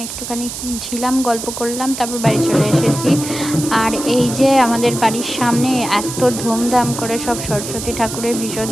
একটুখানি ছিলাম, গল্প করলাম, তারপর বাড়ি চলে এসেছি। আর এই যে আমাদের বাড়ির সামনে এত ধুমধাম করে সব সরস্বতী ঠাকুরের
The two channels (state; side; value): noise; right; hiss, 8 dB below the sound